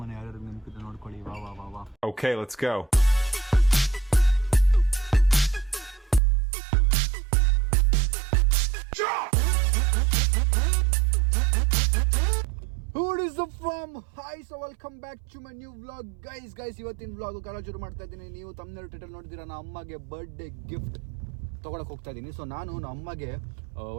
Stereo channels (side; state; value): left; drops out; at 6.2 s